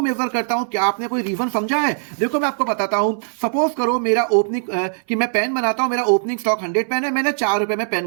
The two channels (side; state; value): left; silent; 60 dB below the other